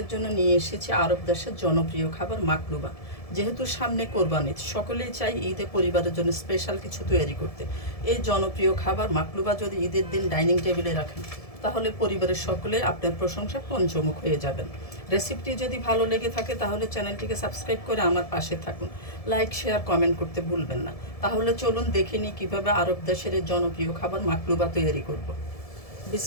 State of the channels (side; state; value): right; late; 1.7 ms